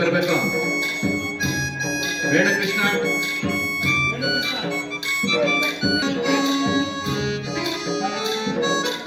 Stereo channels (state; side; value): identical; both; correlation 1.00